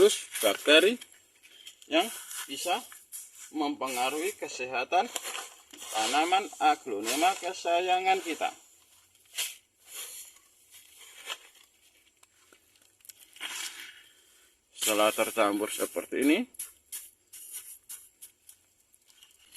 bakteri yang bisa mempengaruhi kesehatan tanaman aglonema kesayangan kita. Setelah tercampur seperti ini,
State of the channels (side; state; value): both; identical; correlation 1.00